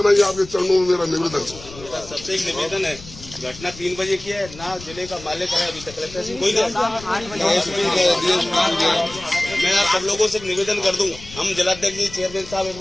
ही आपके चरणों में मेरा निवेदन है। सबसे एक निवेदन है, घटना 3 बजे की है, ना जिले का मालिक है अभी तक, कलेक्टर से कोई मैं आप सब लोगों से एक निवेदन कर दूं, हम जिलाध्यक्ष जी, चेयरमैन साहब एक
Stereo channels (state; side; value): noise; left; rumble, 17 dB below the sound